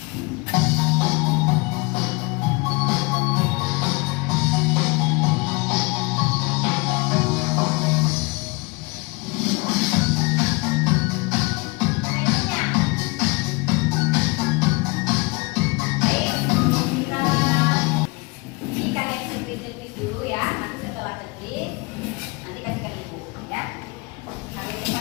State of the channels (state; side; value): quieter; right; 26.1 dB